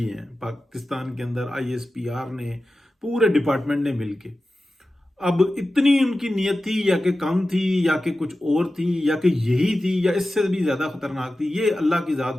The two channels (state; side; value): normal; both; correlation 0.94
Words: ہیں پاکستان کے اندر ISPR نے، پورے ڈپارٹمنٹ نے مل کے. اب اتنی ان کی نیت تھی یا کہ کم تھی یا کہ کچھ اور تھی یا کہ یہی تھی یا اس سے بھی زیادہ خطرناک تھی، یہ اللہ کی ذات